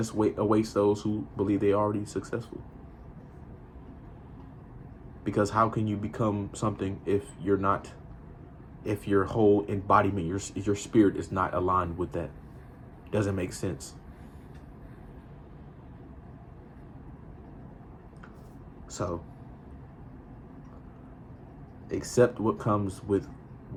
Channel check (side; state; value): both; identical; correlation 1.00